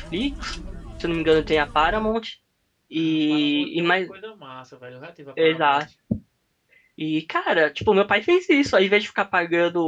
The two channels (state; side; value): identical; both; correlation 1.00